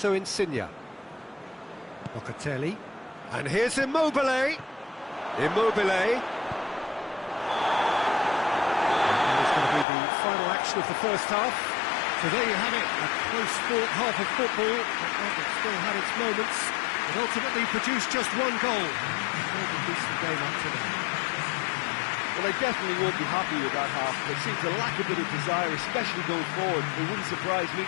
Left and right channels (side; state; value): right; drops out; at 9.9 s